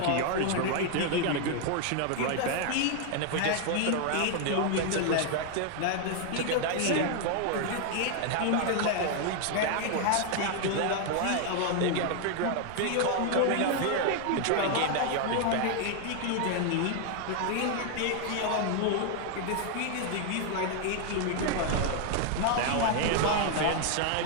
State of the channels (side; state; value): both; different; correlation 0.00